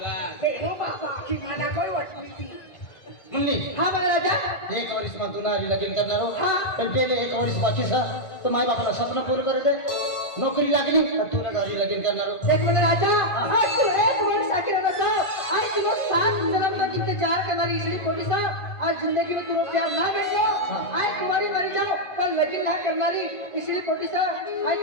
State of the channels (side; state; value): right; late; 1.5 ms